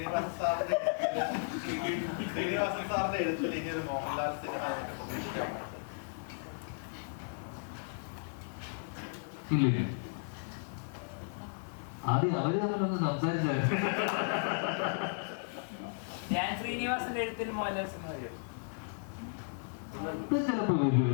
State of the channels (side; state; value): right; silent; 55 dB below the other